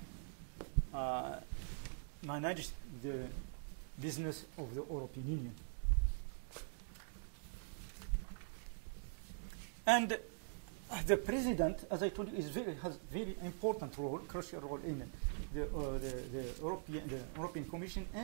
manage the business of the European Union. And the president, as I told you, has very important role, crucial role in the European Commission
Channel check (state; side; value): silent; left; digital silence